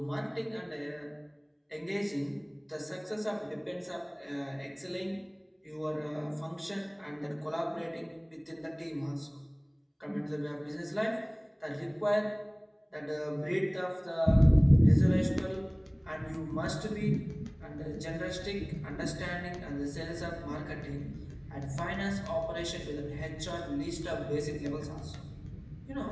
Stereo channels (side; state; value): both; identical; correlation 1.00